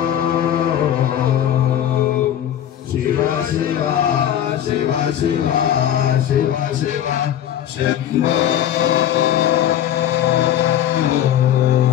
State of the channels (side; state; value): right; quieter; 10.8 dB